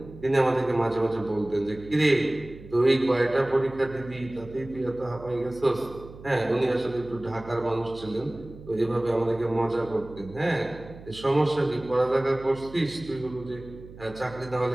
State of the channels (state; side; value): noise; right; hum, 17 dB below the sound